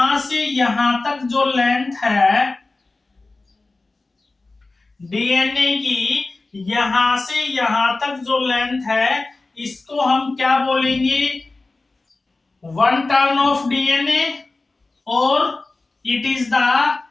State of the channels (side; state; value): right; quieter; 3.4 dB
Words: से यहां तक जो लेंथ है डीएनए की, यहां से यहां तक जो लेंथ है इसको हम क्या बोलेंगे? 1 टर्न ऑफ डीएनए, और it is the